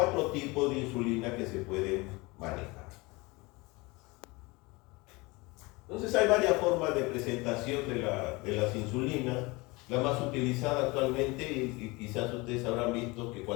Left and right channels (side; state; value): right; quieter; 24.5 dB